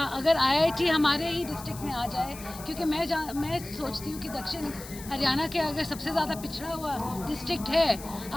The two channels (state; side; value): noise; left; hiss, 14 dB below the sound